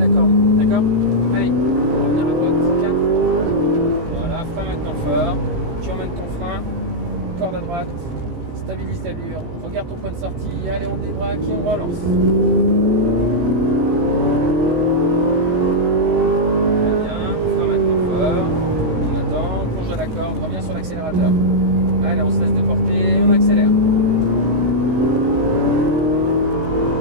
corde. D'accord? Allez, on va revenir à droite. 4. Voilà, frein maintenant fort. Tu emmènes ton frein, corde à droite, stabilise l'allure, regarde ton point de sortie. Allez, on débraque et on relance. Reviens sur l'accélérateur. Allez, on se laisse déporter, on accélère.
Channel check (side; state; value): left; late; 18 ms